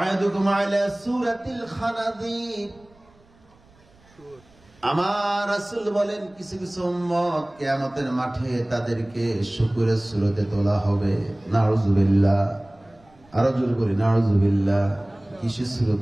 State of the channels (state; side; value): noise; right; rumble, 30 dB below the sound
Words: আলা সূরাতিল খানাযির। আমার রাসূল বলেন কিছু কিছু উম্মত কিয়ামতের মাঠে তাদেরকে শুকরের সূরতে তোলা হবে। নাউযুবিল্লাহ। আরো জোরে বলি নাউযুবিল্লাহ। কিসের